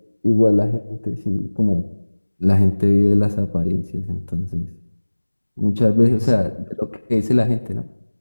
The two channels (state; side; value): inverted; both; correlation -1.00